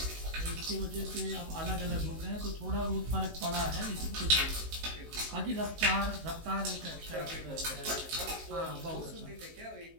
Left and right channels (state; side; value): late; left; 19 ms